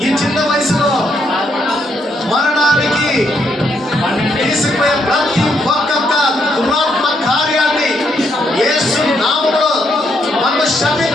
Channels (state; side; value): normal; both; correlation 0.76